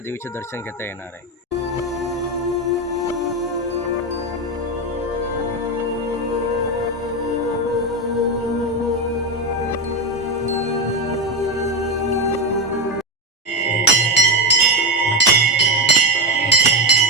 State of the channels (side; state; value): both; normal; correlation 0.12